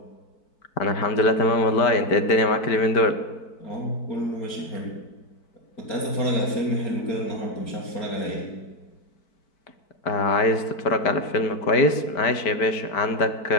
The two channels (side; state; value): right; late; 4.5 ms